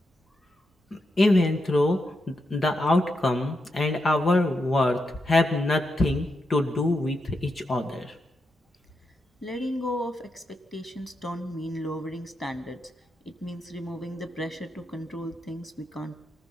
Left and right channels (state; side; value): normal; both; correlation 0.85